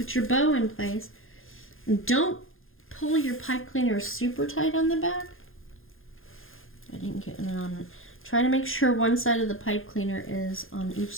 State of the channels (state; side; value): late; right; 0.60 ms